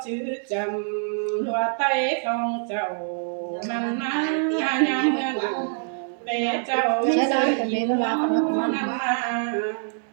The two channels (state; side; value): silent; left; 62 dB below the other